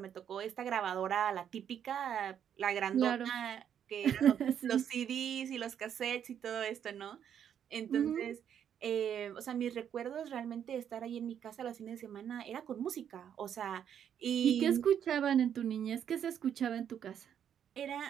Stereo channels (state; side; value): quieter; left; 9.0 dB